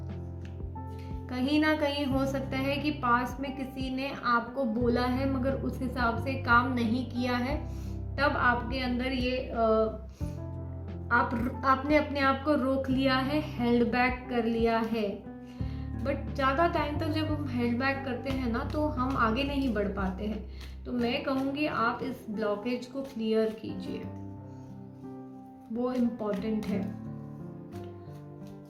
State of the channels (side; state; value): both; identical; correlation 1.00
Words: कहीं ना कहीं हो सकता है कि पास में किसी ने आपको बोला है मगर उस हिसाब से काम नहीं किया है, तब आपके अंदर ये आपने अपने आप को रोक लिया है, हेल्ड बैक कर लिया है। बट ज़्यादा टाइम तक जब हम हेल्ड बैक करते हैं ना तो हम आगे नहीं बढ़ पाते हैं। तो मैं कहूँगी आप इस ब्लॉकेज को क्लियर कीजिए, वो इम्पोर्टेंट है।